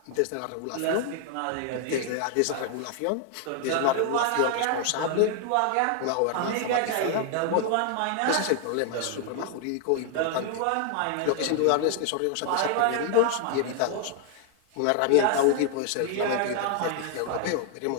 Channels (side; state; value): both; different; correlation 0.00